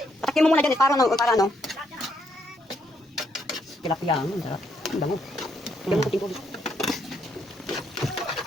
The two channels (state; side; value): normal; both; correlation 0.74